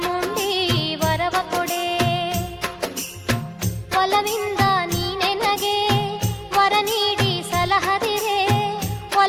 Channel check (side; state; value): both; identical; correlation 1.00